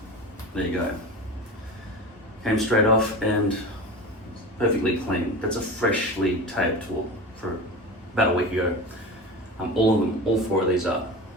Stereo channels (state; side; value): normal; both; correlation 0.29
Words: there you go. Came straight off and perfectly clean. That's a freshly taped tool for about a week ago. All of them, all 4 of these are.